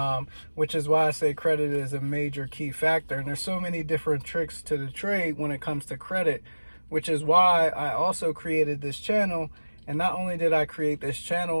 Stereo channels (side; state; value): both; inverted; correlation -1.00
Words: Which is why I say credit is a major key factor. And there's so many different tricks to the trade when it comes to credit, which is why I also created this channel. And not only did I create this